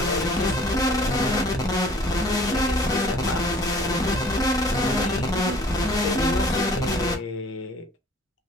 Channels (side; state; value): both; normal; correlation 0.53